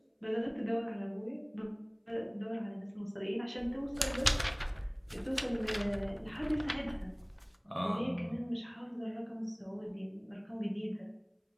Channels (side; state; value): both; identical; correlation 1.00